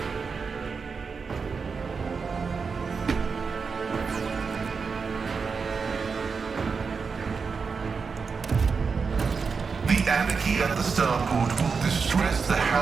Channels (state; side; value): quieter; left; 5.2 dB